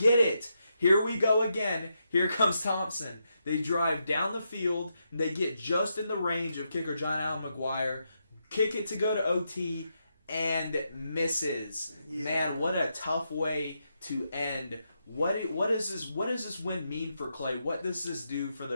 it. Here we go again. Here comes Thompson. They drive down the field. And they get just in the range of kicker John Allen McGuire. Kick it to go to OT and misses. Yeah. Man, what a tough way to end. What does this win mean for Clay? What does this do for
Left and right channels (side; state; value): both; inverted; correlation -0.83